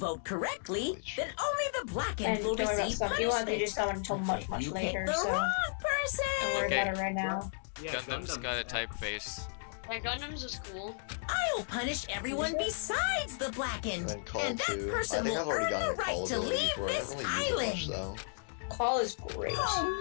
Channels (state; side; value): silent; right; digital silence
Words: correctly, then only the blackened And will don't worry about receive stuff. You won't have to do punishment. someone until much, much If you later, pick the so wrong don't person, worry Okay. about it right now. Yeah, Gundam's got a typeface. Yeah, Gundam's is cool. I'll punish everyone besides the blackened, And then call and that 2. I person think will I've already earn gotten the a call right to ability leave before. I this don't really use it much island. though. Call is great. Oh